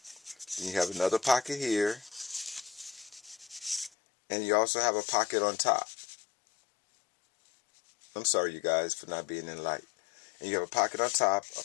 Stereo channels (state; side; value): drops out; right; at 3.9 s